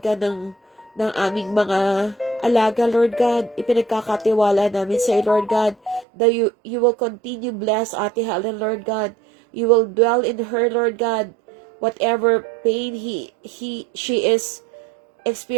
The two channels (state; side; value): drops out; left; at 6.1 s